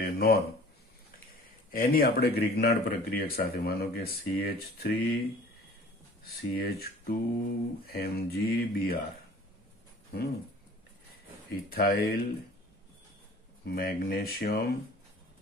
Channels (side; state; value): both; normal; correlation 0.47